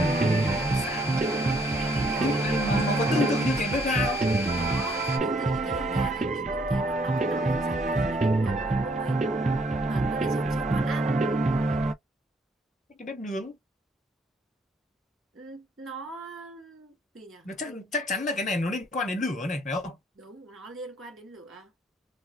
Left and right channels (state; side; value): normal; both; correlation 0.68